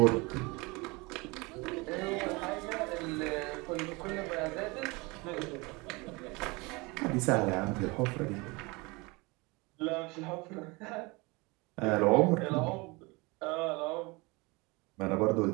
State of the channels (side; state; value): left; quieter; 25.7 dB